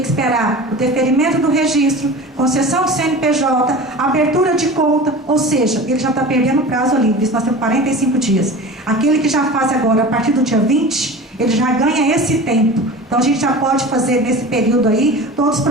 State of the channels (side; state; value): both; normal; correlation 0.35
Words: esperar o deferimento do registro, concessão do CNPJ, abertura de conta, ou seja, ele já está perdendo o prazo ali, nós temos 45 dias. Aquele que já faz agora, a partir do dia 20, ele já ganha esse tempo. Então a gente já pode fazer nesse período aí todos os